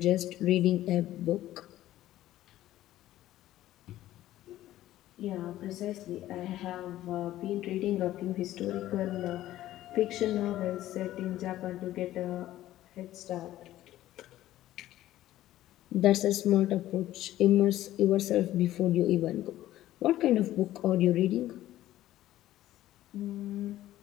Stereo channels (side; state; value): right; quieter; 14.2 dB